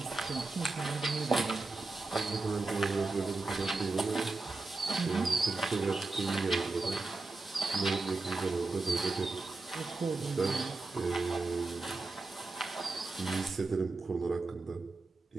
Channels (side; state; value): left; quieter; 3.5 dB